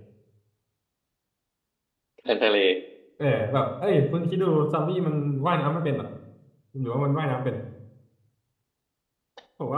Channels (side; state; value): both; identical; correlation 1.00